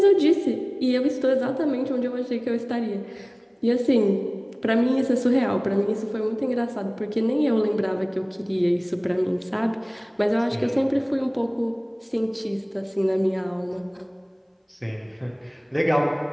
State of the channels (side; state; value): both; identical; correlation 1.00